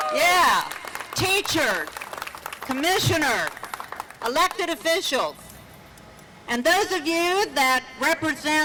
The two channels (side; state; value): both; identical; correlation 1.00